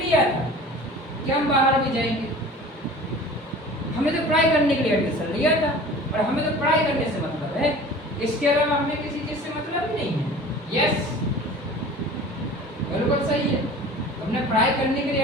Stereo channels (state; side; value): normal; both; correlation 0.42